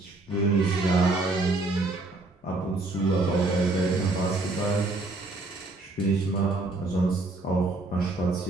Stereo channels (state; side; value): quieter; left; 3.0 dB